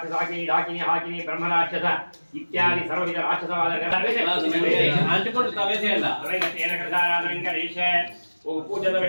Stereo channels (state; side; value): inverted; both; correlation -1.00